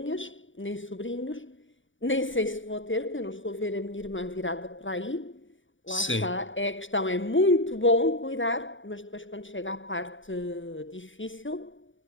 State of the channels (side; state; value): right; late; 0.56 ms